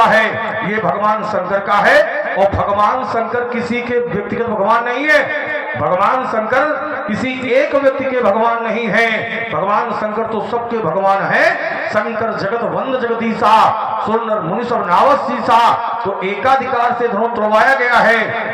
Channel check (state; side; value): identical; both; correlation 1.00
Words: है ये भगवान शंकर का है। और भगवान शंकर किसी के व्यक्तिगत भगवान नहीं है, भगवान शंकर किसी एक व्यक्ति के भगवान नहीं है, भगवान शंकर तो सबके भगवान है। शंकर जगत वंद जगदीशा सुर मुनि सब नावसीसा। तो एकाधिकार से धनुष तोड़वाया गया है,